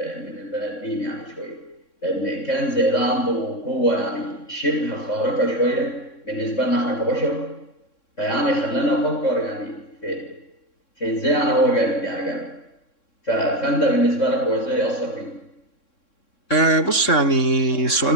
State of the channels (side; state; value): right; late; 3.6 ms